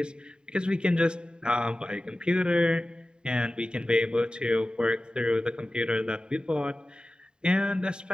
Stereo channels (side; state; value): left; late; 0.048 ms